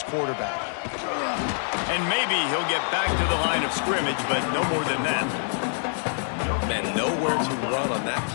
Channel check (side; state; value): right; silent; 61 dB below the other